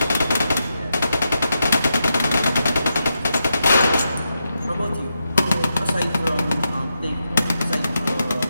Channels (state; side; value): inverted; both; correlation -0.86